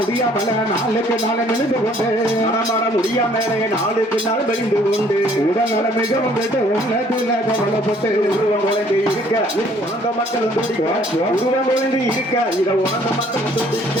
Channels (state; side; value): normal; both; correlation 0.60